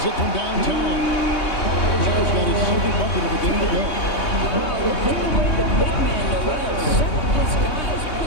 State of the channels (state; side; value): late; right; 3.2 ms